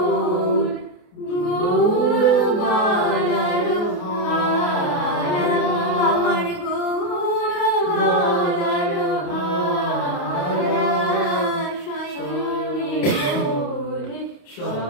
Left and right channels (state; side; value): late; right; 28 ms